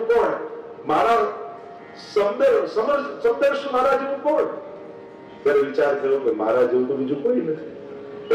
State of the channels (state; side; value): identical; both; correlation 1.00